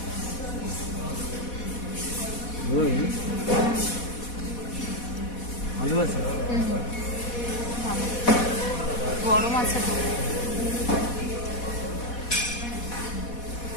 ভালো আছে, গরম আছে তো।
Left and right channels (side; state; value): right; late; 4.1 ms